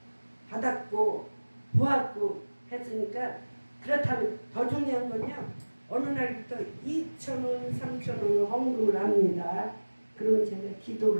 받았고 보았고 했으니까 그렇다면 더 중요한 건요. 어느 날부터 2,000원, 3,000원 헌금을 합니다. 그러면 제가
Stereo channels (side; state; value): both; inverted; correlation -1.00